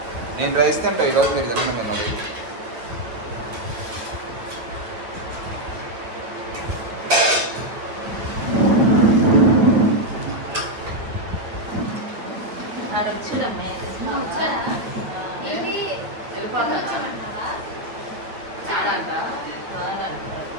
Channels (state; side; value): late; left; 9.3 ms